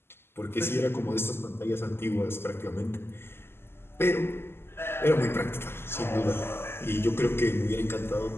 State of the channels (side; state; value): right; late; 0.12 ms